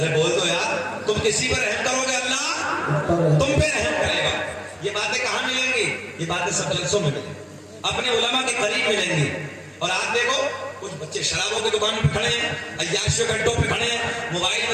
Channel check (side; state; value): both; identical; correlation 1.00